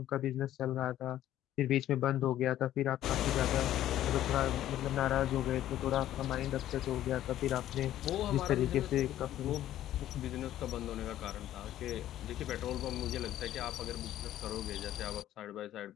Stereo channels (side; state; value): right; quieter; 12.7 dB